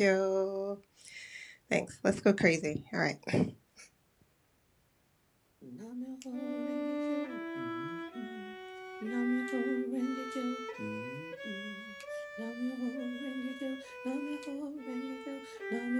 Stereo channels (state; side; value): identical; both; correlation 1.00